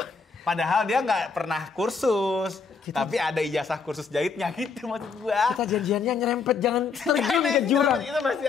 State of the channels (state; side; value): quieter; right; 5.1 dB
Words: Padahal dia nggak pernah kursus. Tapi ada ijazah kursus jahitnya gitu maksud gue. Kita janjiannya nyerempet, jangan terjun ke jurang. Itu masih